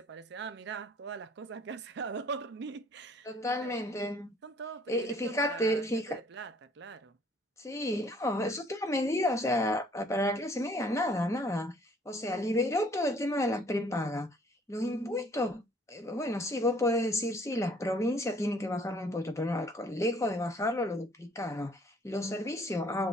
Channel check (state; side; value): normal; both; correlation 0.59